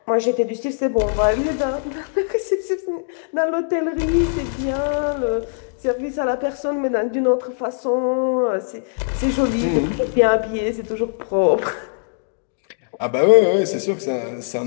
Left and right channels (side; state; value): right; silent; digital silence